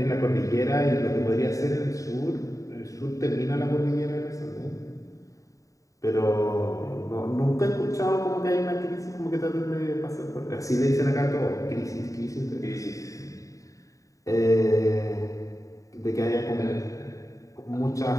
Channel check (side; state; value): right; late; 0.16 ms